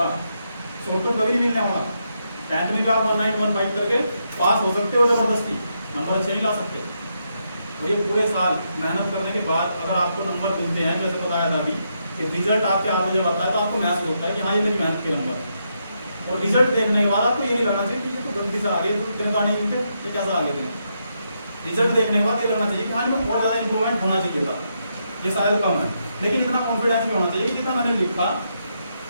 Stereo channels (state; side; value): inverted; both; correlation -0.80